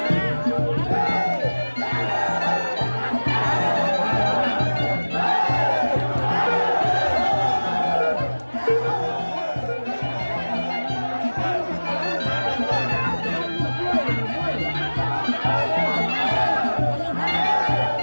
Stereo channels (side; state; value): both; inverted; correlation -1.00